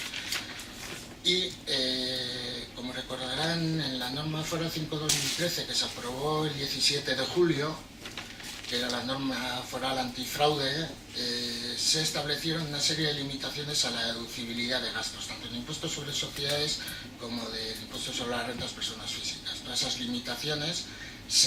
Y, como recordarán, en la norma foral 5/2013 que se aprobó el 17 de julio, que era la norma foral antifraude, se establecieron una serie de limitaciones a la deducibilidad de gastos, tanto en impuestos sobre sociedades como del impuesto sobre las rentas personas físicas. Todas esas limitaciones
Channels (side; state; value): both; identical; correlation 1.00